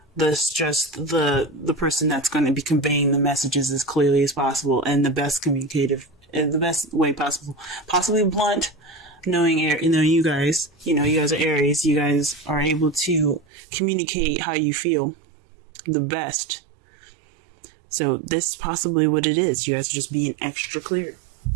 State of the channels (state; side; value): drops out; left; at 13.5 s